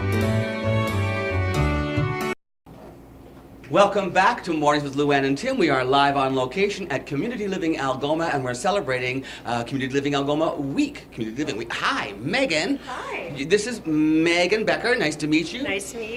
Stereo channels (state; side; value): identical; both; correlation 1.00